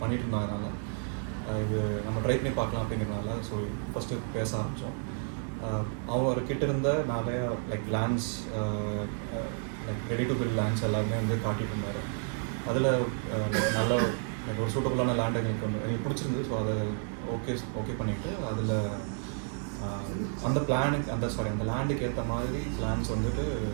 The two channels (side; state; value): left; silent; 57 dB below the other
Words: பண்ணிட்டு இருந்தாங்கனால இது நம்ம ட்ரை பண்ணி பார்க்கலாம் அப்படிங்கிறதுனால ஸோ ஃபஸ்ட்டு பேச ஆரம்பித்தோம். அவர்கிட்ட இருந்த நிறையா like lands, like ready to build lands எல்லாமே வந்து காட்டிட்டு இருந்தார். அதில் நல்ல லைக் ஒரு சூட்டபுளான லேண்ட் எங்களுக்கு எங்களுக்கு பிடிச்சிருந்தது. ஸோ அதை ஓகே பண்ணிவிட்டு அதில் அந்த பிளானுக்கு அந்த லேண்டுக்கு ஏற்ற மாதிரி பிளான்ஸ் வந்துட்டு